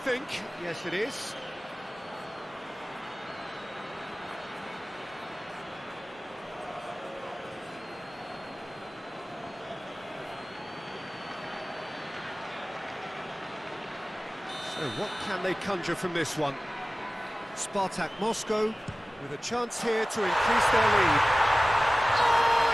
Yes, it is. So what can they conjure from this one? Spartak Moscow with a chance here to increase their lead. Oh,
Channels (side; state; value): both; normal; correlation 0.97